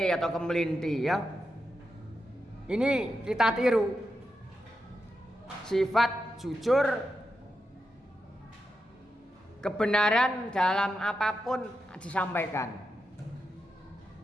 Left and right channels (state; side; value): normal; both; correlation 0.87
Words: atau kemelinti ya. Ini kita tiru. Sifat jujur, kebenaran dalam apapun disampaikan.